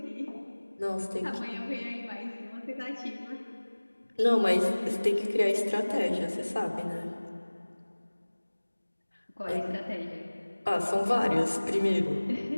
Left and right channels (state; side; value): inverted; both; correlation -1.00